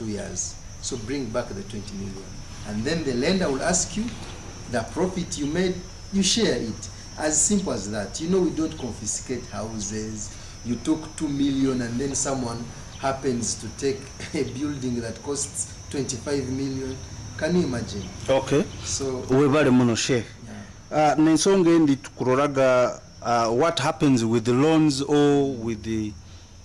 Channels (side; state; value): both; identical; correlation 1.00